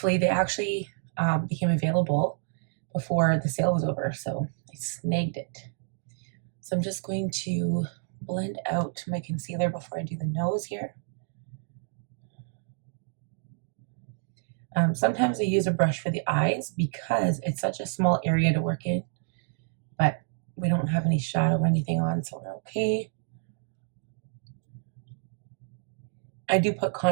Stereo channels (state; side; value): silent; left; digital silence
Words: they actually became available before the sale was over, so I snagged it. So I'm just going to blend out my concealer before I do the nose here. Sometimes I use a brush for the eyes because it's such a small area to work in, but we don't have any shadow or anything on, so we're okay. I do put